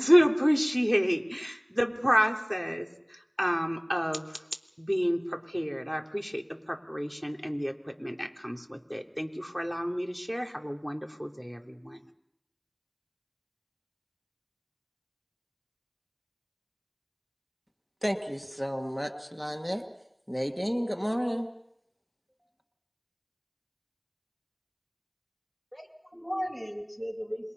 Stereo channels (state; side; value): identical; both; correlation 1.00